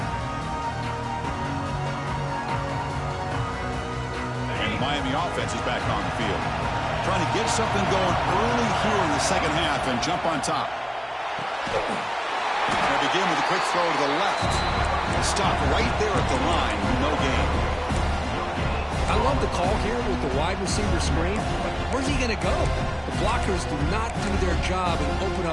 And the Miami offense is back on the field. Trying to get something going early here in the second half and jump on top. They begin with a quick throw to the left. Stop right there at the line. No gain. I love the call here with the wide receiver screen, but where's he going to go? The blockers do not do their job and open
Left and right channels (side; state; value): both; identical; correlation 1.00